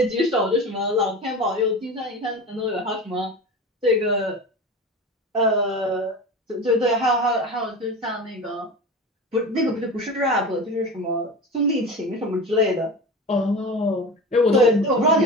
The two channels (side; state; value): both; normal; correlation 0.30